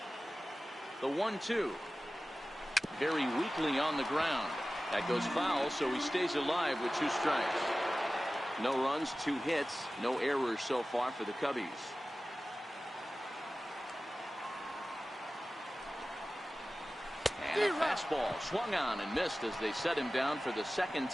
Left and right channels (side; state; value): both; normal; correlation 0.96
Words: The 1-2. Very weakly on the ground. That goes foul, so he stays alive with 2 strikes. No runs, 2 hits, no errors so far for the Cubbies. And a fastball swung on and missed as they set him down for the second